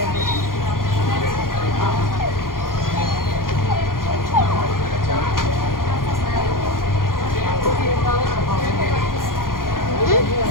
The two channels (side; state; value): right; late; 0.91 ms